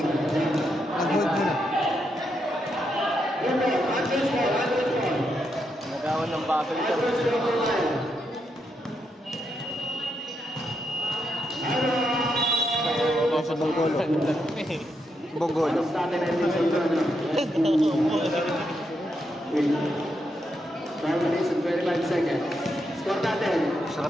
Nag-hold muna. Andres ball. Nagawan ng bubble ka. Andres ball. Sa Bonggolo. Bonggolo. Sa atin ay hindi sa 5 minutes and 25 seconds. Score natin.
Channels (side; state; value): both; normal; correlation 0.81